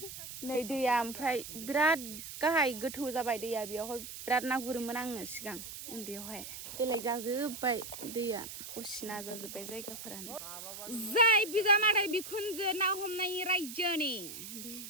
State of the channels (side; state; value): right; noise; hiss, 10 dB below the sound